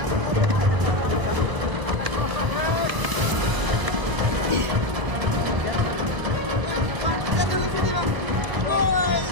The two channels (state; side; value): late; left; 1.0 ms